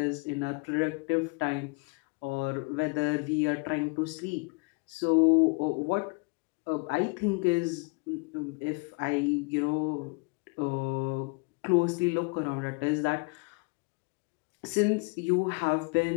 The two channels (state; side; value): quieter; right; 30.8 dB